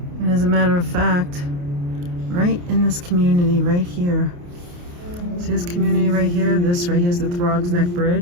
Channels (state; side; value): late; left; 28 ms